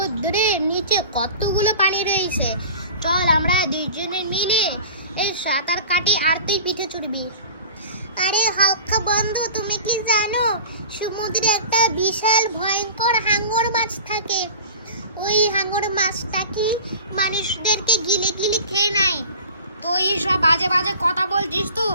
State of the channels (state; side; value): inverted; both; correlation -0.40